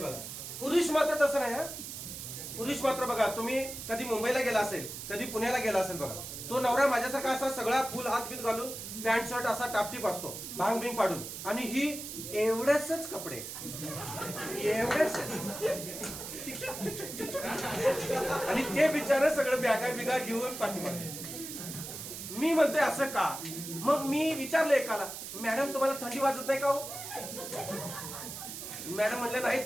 पुरुष मात्र तसं नाही. हा पुरुष मात्र बघा, तुम्ही कधी मुंबईला गेला असेल, कधी पुण्याला गेला असेल बघा, तो नवरा माझ्यासारखा असा सगळा फुल हात बीत घालून, पॅन्ट शर्ट असा टापटीप असतो, भांग बिंग पाडून, आणि ही एवढेच कपडे, एवढेच, आणि ते बिचारे सगळं बॅगा बिगा घेऊन पाठीमागे. मी म्हणतोय असं का? मग मी विचारलं एकाला, मॅडम तुम्हाला थंडी वाजत नाही का हो? मॅडम म्हणले नाही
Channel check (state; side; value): noise; right; hiss, 9 dB below the sound